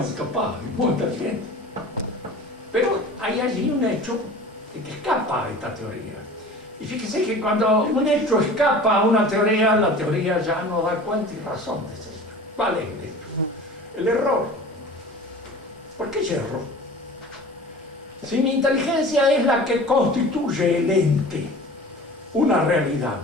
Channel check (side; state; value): both; normal; correlation 0.40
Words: capaz y muy inteligente. Pero hay allí un hecho que escapa a esta teoría. Y fíjese que cuando un hecho escapa a una teoría, la teoría ya no da cuenta y razón de ser. ¿Cuál es el hecho? El error. ¿Por qué yerro? Si mi inteligencia es la que constituye el ente, una realidad,